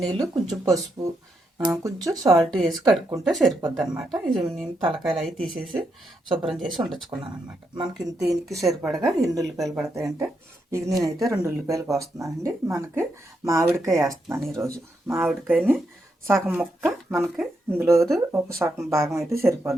నీళ్ళు, కొంచెం పసుపు, కొంచెం సాల్ట్ వేసి కడుక్కుంటే సరిపోద్ది అనమాట. ఇది నేను తలకాయలు అవి తీసేసి శుభ్రం చేసి ఉండొచ్చుకున్నాను అనమాట. మనకి దీనికి సరిపడగా ఎన్ని ఉల్లిపాయలు పడతాయంటే ఇది నేనైతే 2 ఉల్లిపాయలు కోస్తున్నానండి. మనకి మామిడికాయ వేస్తున్నాను ఈరోజు. మామిడికాయని సగం ముక్క మనకి ఇందులో ఒక సగం భాగం అయితే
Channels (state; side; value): normal; both; correlation 0.81